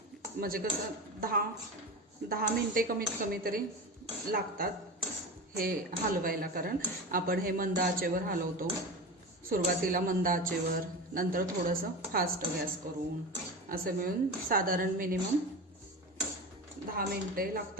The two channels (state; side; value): normal; both; correlation 0.27